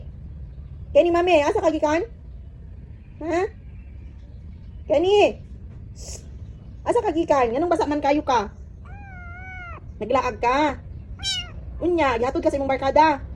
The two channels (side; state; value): both; identical; correlation 1.00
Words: Kenny, mami, asa kagikan? Ha? Kenny? Asa kagikan? Anong basa man kayo ka? Naglaag ka? Unya, gihatod ka sa imong barkada?